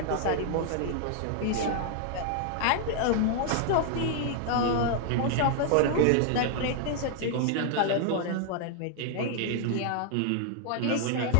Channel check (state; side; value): different; both; correlation 0.00